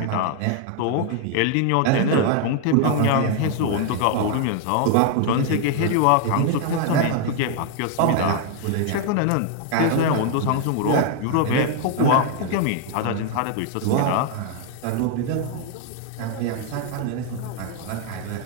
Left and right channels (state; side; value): different; both; correlation 0.00